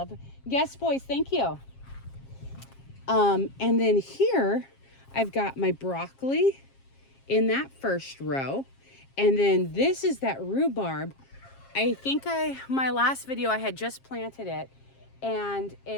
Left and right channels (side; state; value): right; late; 7.4 ms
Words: it. Yes, boys, thank you. And then here I've got my broccoli in that first row. And then this is that rhubarb. I think my last video I had just planted it, and